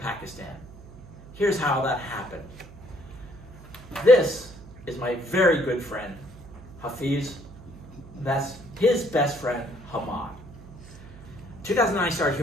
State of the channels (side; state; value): right; noise; hum, 18 dB below the sound